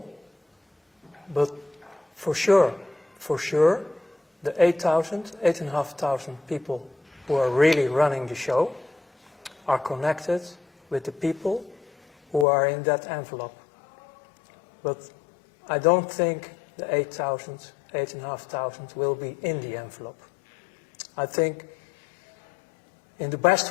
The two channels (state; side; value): drops out; right; at 12.5 s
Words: but for sure, the 8,500 people who are really running the show are connected with the people who are in that envelope. But I don't think the 8,500 will be in the envelope. I think in the